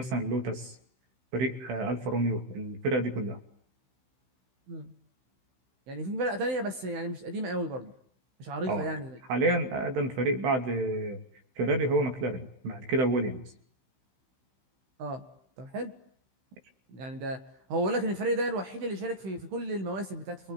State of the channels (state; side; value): late; left; 15 ms